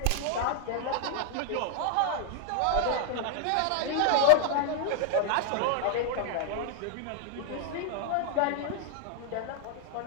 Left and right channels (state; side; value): different; both; correlation 0.00